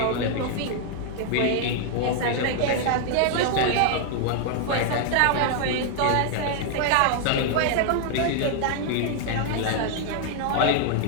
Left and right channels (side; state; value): both; different; correlation 0.00